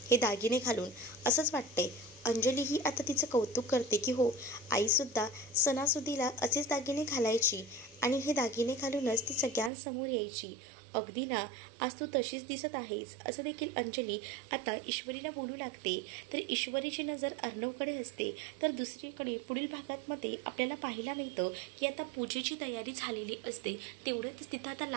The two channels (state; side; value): drops out; left; at 9.7 s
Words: हे दागिने घालून, असंच वाटतंय. अंजलीही आता तिचं कौतुक करते की हो, आईसुद्धा सणासुदीला असेच दागिने घालायची आणि हे दागिने घालूनच ती सगळ्यांसमोर यायची. अगदी ना, आज तू तशीच दिसत आहेस, असं देखील अंजली आता ईश्वरीला बोलू लागते. तर ईश्वरीची नजर अर्णवकडे असते. तर दुसरीकडे पुढील भागामध्ये आपल्याला पाहायला मिळतं की आता पूजेची तयारी झालेली असते. तेवढंच तिथं आता